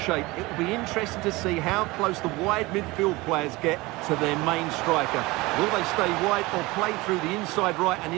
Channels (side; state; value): left; quieter; 21.9 dB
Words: shape, it will be interesting to see how close the wide midfield players get to their main striker. Will they stay wide or play through the inside right and